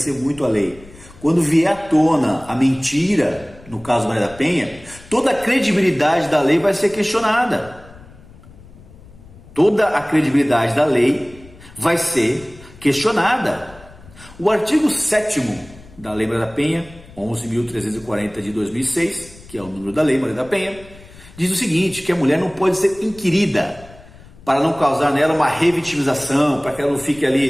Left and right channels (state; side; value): noise; left; rumble, 21 dB below the sound